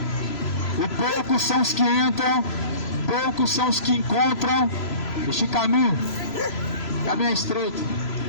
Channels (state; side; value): late; right; 3.0 ms